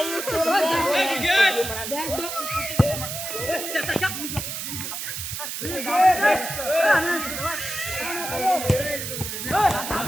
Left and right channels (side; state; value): right; noise; hiss, 5 dB below the sound